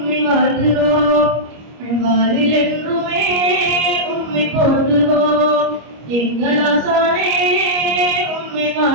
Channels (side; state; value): left; late; 25 ms